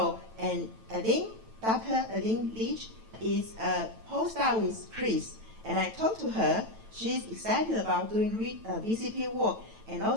and I think Dr. Leach is a postdoc with Chris. And I talked to her, she's excited about doing VCP work. And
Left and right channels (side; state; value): left; late; 9.1 ms